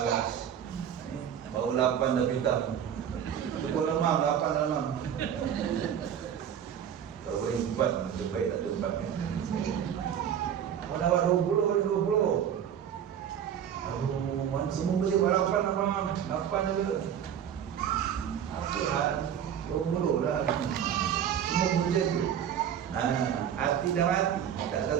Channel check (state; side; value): quieter; left; 9.1 dB